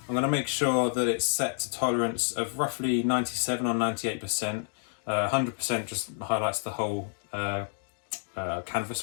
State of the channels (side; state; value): right; silent; digital silence